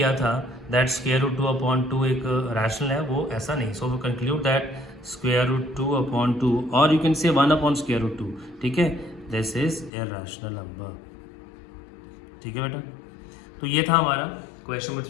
था दैट √2/2 एक रैशनल है, वो ऐसा नहीं। सो वी कंक्लूड दैट √2/2 और यू कैन से 1/√2, ठीक है, दिस इज इरेशनल नंबर, ठीक है बेटा। तो ये था हमारा क्वेश्चन नंबर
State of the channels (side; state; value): right; drops out; at 9.9 s